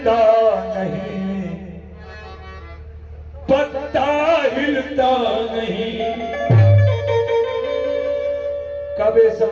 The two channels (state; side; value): identical; both; correlation 1.00